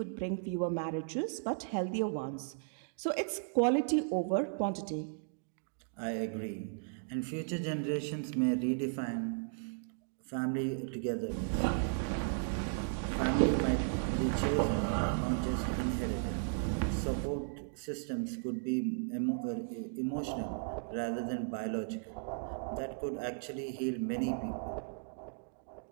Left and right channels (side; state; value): left; silent; digital silence